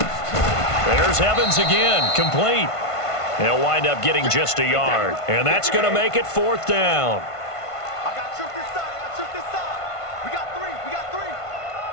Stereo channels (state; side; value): late; right; 1.5 ms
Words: There's Evans again, complete. They'll wind up getting just a yard. And that's going to make it 4th down. I got truth this side. I got truth this side. We got 3. We got 3.